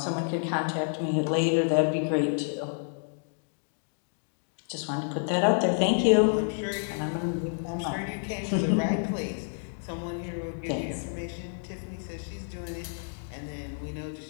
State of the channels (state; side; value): silent; right; digital silence